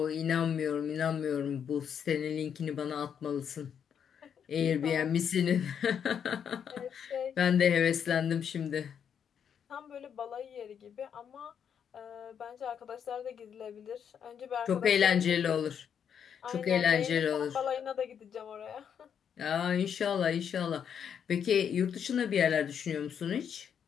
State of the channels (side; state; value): right; quieter; 7.9 dB